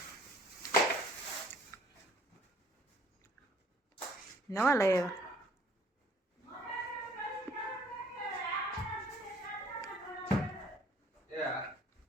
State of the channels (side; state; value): both; normal; correlation 0.58